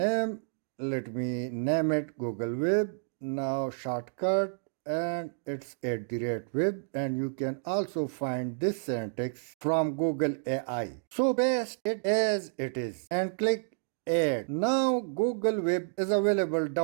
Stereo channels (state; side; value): silent; left; digital silence